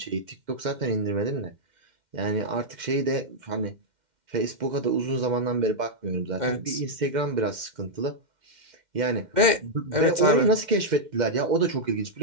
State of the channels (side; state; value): left; late; 2.1 ms